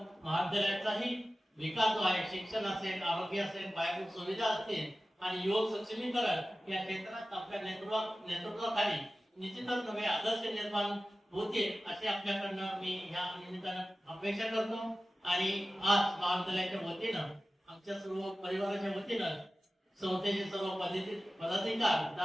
महाविद्यालयाचाही विकास जो आहे, शिक्षण असेल, आरोग्य असेल, पायाभूत सुविधा असतील आणि युवक सक्षमीकरण या क्षेत्रात आपल्या नेतृत्वाखाली निश्चितच नवे आदर्श निर्माण होतील अशी आपल्याकडनं मी ह्या निमित्तानं अपेक्षा करतो. आणि आज महाविद्यालयाच्या वतीनं, आमच्या सर्व परिवाराच्या वतीनं, संस्थेचे सर्व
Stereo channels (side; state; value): both; normal; correlation 0.96